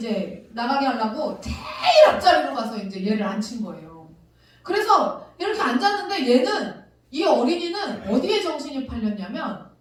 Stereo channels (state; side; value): identical; both; correlation 1.00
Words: 나가게 하려고 제일 앞자리로 가서 이제 얘를 앉힌 거예요. 그래서 이렇게 앉았는데 이 어린이는 어디에 정신이 팔렸냐면